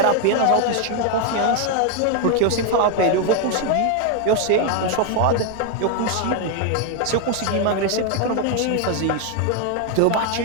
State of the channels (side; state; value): both; different; correlation 0.01